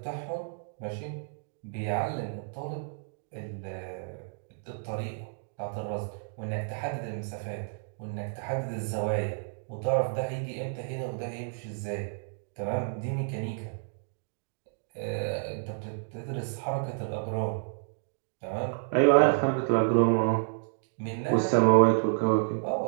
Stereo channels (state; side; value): silent; left; digital silence